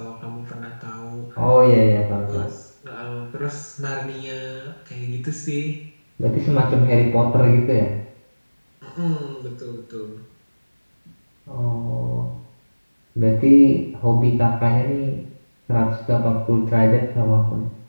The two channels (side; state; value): both; inverted; correlation -1.00